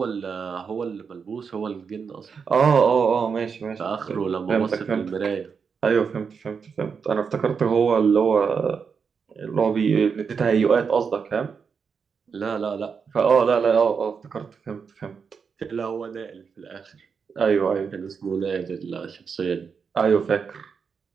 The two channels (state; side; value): quieter; left; 6.0 dB